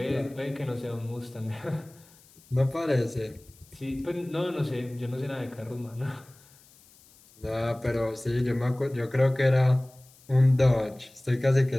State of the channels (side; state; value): left; noise; hiss, 27 dB below the sound